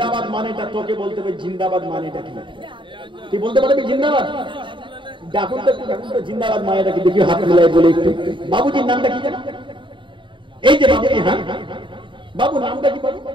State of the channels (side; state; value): left; late; 0.24 ms